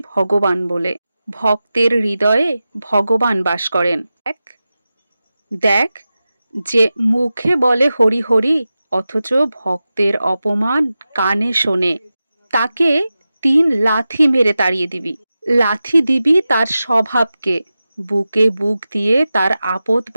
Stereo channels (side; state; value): both; inverted; correlation -0.93